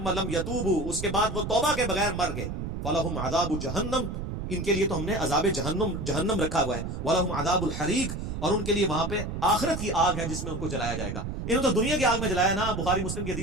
لم یتوبوا, اس کے بعد وہ توبہ کے بغیر مر گئے, فلہم عذاب جہنم, ان کے لیے تو ہم نے عذاب جہنم رکھا ہوا ہے, ولہم عذاب الحریق, اور ان کے لیے وہاں پہ آخرت کی آگ ہے جس میں ان کو جلایا جائے گا. انہوں تو دنیا کی آگ میں جلایا نا. بخاری مسلم کی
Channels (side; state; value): right; noise; rumble, 5 dB below the sound